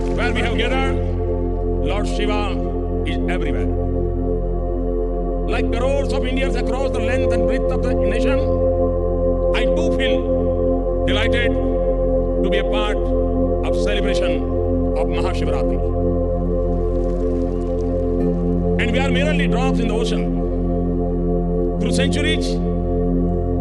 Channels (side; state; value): both; identical; correlation 1.00